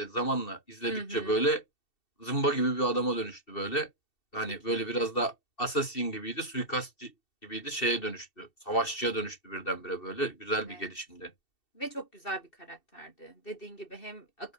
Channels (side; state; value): right; late; 2.7 ms